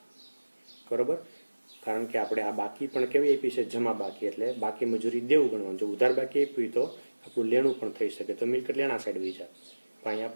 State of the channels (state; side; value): inverted; both; correlation -1.00